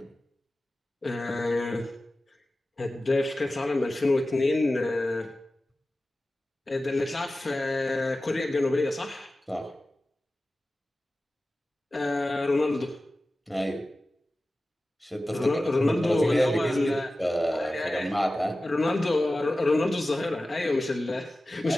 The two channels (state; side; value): normal; both; correlation 0.95